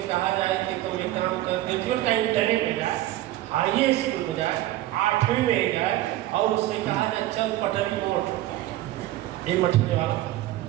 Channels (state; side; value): quieter; left; 15.2 dB